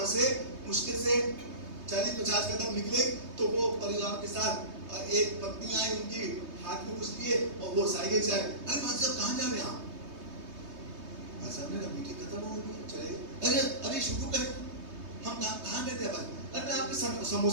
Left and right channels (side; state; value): left; late; 3.2 ms